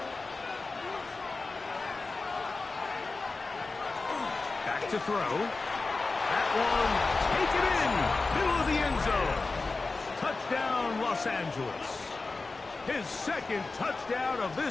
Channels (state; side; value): quieter; right; 3.7 dB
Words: Back to throw. That one, take it in, middle of the end zone. Touchdown, Los Angeles. His second touchdown of